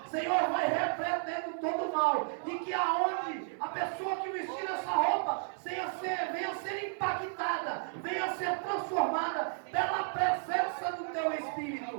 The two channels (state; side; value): silent; left; digital silence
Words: Senhor, vai repreendendo todo mal, e que aonde a pessoa que vestir essa roupa venha ser impactada, venha ser transformada pela presença do teu